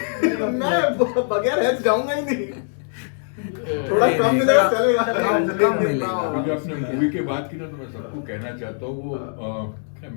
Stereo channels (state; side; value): silent; right; digital silence